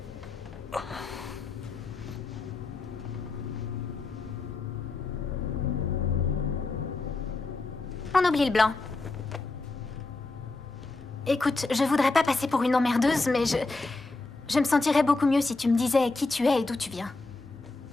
On oublie le blanc. Écoute, je voudrais pas passer pour une emmerdeuse, mais je me sentirais beaucoup mieux si tu me disais qui tu es et d'où tu viens.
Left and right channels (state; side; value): quieter; right; 3.5 dB